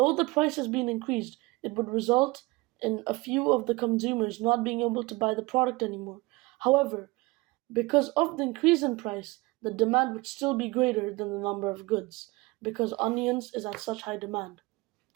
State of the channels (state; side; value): quieter; left; 23.1 dB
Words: the price has been increased, it would result in a few of the consumers not being able to buy the product anymore. However, because of the increase in price, the demand would still be greater than the number of goods, because onions is at such high demand.